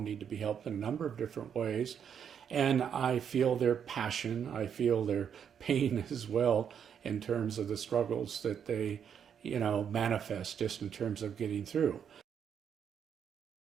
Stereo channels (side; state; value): left; quieter; 8.0 dB